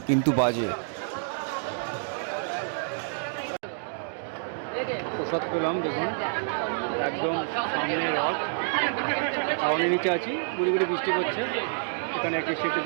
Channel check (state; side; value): silent; left; digital silence